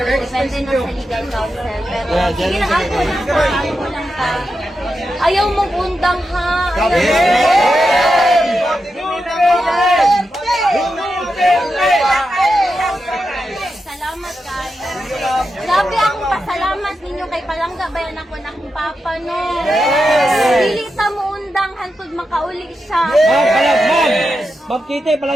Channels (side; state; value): both; normal; correlation 0.88